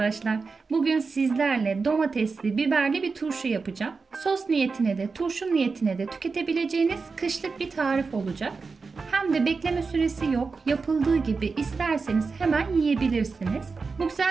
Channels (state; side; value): quieter; left; 4.6 dB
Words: Bugün sizlerle domatesli, biberli bir turşu yapacağım. Sos niyetine de, turşu niyetine de tüketebileceğiniz kışlık bir tarif olacak. Hem de bekleme süresi yok. Yapıldığı gibi isterseniz hemen yiyebilirsiniz. Bu